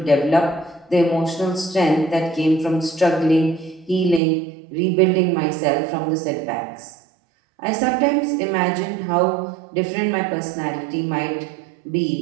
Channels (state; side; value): drops out; left; at 4.2 s